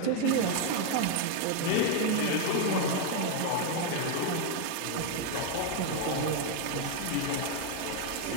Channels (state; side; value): different; both; correlation 0.01